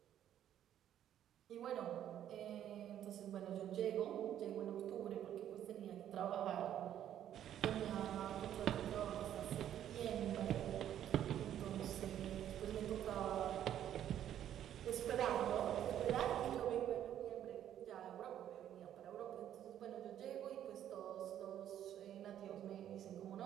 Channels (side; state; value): left; quieter; 10.8 dB